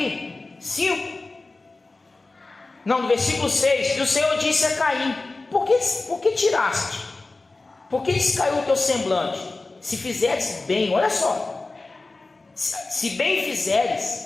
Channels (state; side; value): quieter; right; 3.4 dB